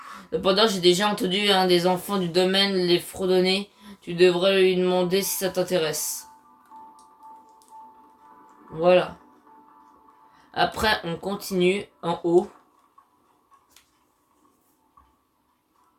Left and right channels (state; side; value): identical; both; correlation 1.00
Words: Cependant, j'ai déjà entendu un des enfants du domaine les fredonner. Tu devrais lui demander si ça t'intéresse. Voilà. Après, on continue en haut.